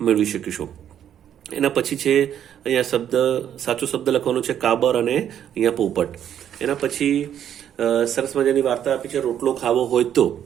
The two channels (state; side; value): quieter; left; 9.8 dB